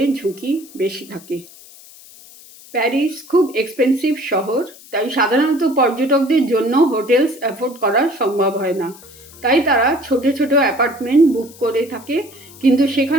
ঝুঁকি বেশি থাকে। প্যারিস খুব এক্সপেন্সিভ শহর, তাই সাধারণত পর্যটকদের জন্য হোটেলস অ্যাফোর্ড করা সম্ভব হয় না। তাই তারা ছোট ছোট অ্যাপার্টমেন্ট বুক করে থাকে, কিন্তু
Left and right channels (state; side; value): noise; left; hiss, 21 dB below the sound